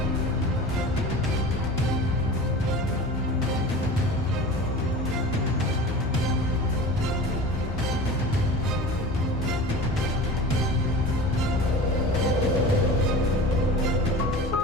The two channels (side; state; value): both; normal; correlation 0.35